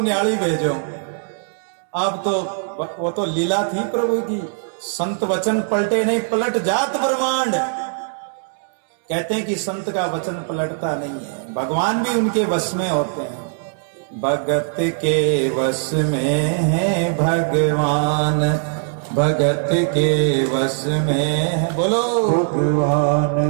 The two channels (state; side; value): silent; left; 65 dB below the other